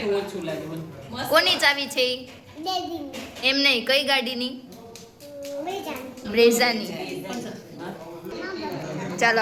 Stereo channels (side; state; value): both; identical; correlation 1.00